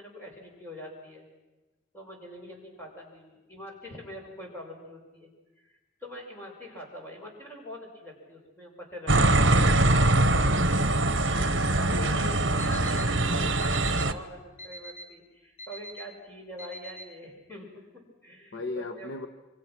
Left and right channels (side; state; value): both; normal; correlation 0.47